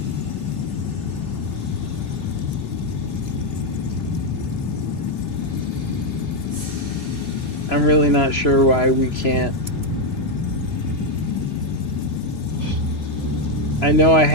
I'm really not sure why we can't. I know I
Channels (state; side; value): late; right; 3.0 ms